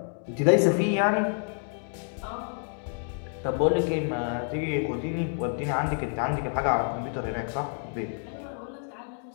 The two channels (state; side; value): silent; right; 59 dB below the other